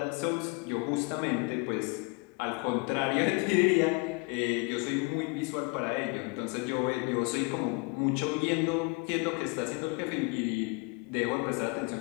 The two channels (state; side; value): quieter; right; 30.1 dB